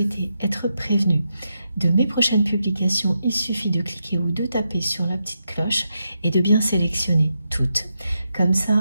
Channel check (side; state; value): both; inverted; correlation -0.85